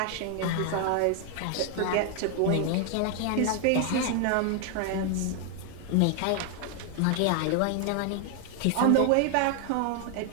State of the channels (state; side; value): different; both; correlation 0.00